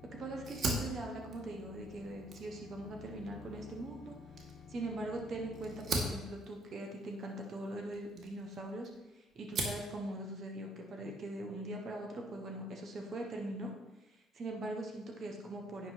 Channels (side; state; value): both; normal; correlation 0.67